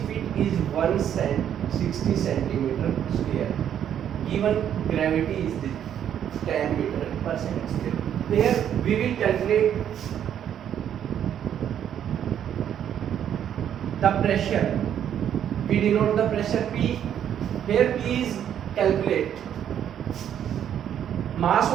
feet is 160 centimeter square. Given gravity is the 10 meter per second square. Here we will calculate the pressure. We denote the pressure P. Here P is calculate. Mass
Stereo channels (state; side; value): quieter; left; 9.7 dB